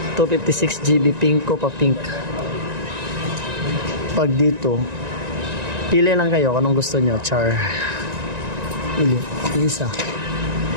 256GB pinko pa pink. Pag dito pili lang kayo kung anong gusto nyo. Char pili isa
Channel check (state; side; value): late; left; 1.9 ms